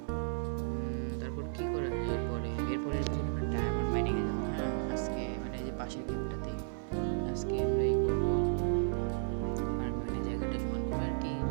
তারপর কি করা যায় এরপরে আমরা ডায়মন্ড মাইনিং এ যাবো। হ্যাঁ আজকে এই যে পাশের গেমটাতে আজকে আমরা করবো।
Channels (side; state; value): left; silent; digital silence